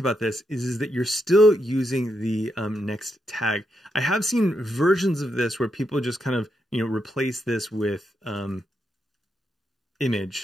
this is that you're still using the next tag. I have seen versions of this where people just kind of, replace this with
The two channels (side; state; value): both; normal; correlation 0.82